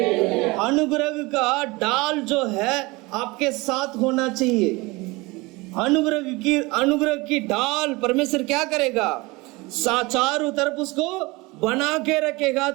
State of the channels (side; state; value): left; quieter; 23.5 dB